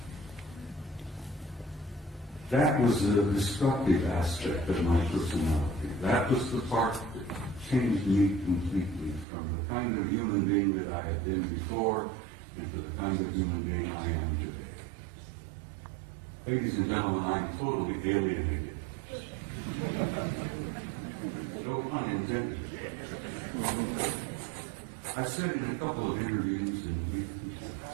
That was the destructive aspect of my personality. That was the part that changed me completely from the kind of human being that I had been before into the kind of human being I am today. Ladies and gentlemen, I am totally alienated. No pun intended. I said in a couple of interviews and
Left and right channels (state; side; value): drops out; left; at 9.2 s